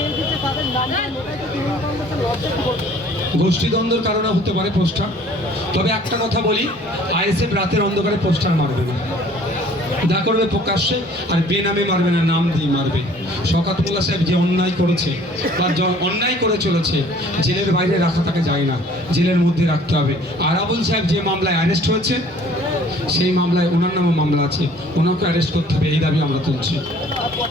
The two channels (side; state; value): both; normal; correlation 0.54